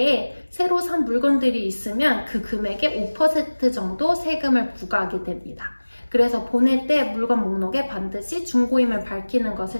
새로 산 물건들이 있으면 그 금액의 5% 정도 세금을 부과하게 됩니다. 그래서 보낼 때 물건 목록에 반드시 중고임을 밝히는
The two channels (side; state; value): both; inverted; correlation -1.00